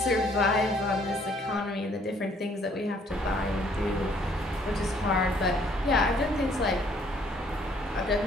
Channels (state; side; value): normal; both; correlation 0.63